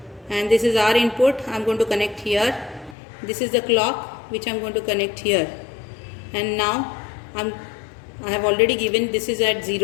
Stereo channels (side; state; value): right; drops out; at 3.0 s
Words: and this is R input I am going to connect here. This is the clock which I am going to connect here, and now I have already given this is at